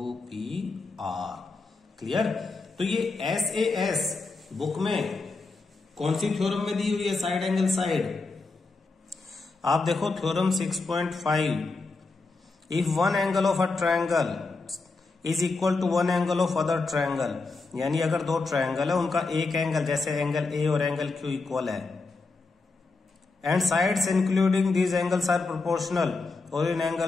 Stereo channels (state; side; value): quieter; right; 3.8 dB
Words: क्लियर? तो ये SAS बुक में कौन सी थ्योरम में दी हुई है साइड एंगल साइड? आप देखो theorem 6.5, if one angle of a triangle is equal to one angle of other triangle, यानी अगर दो ट्रायंगल है उनका एक एंगल जैसे एंगल A और एंगल Q इक्वल है, and sides including these angles are proportional, और इन